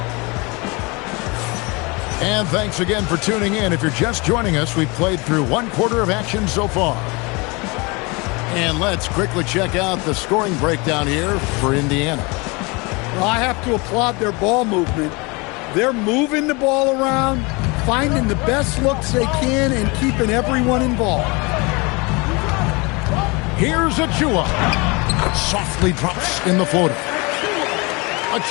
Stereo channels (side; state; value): right; quieter; 27.3 dB